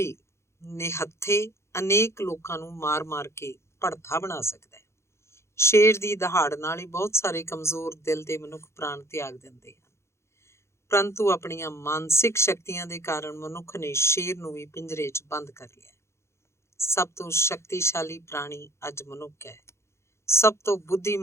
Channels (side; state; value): right; late; 0.13 ms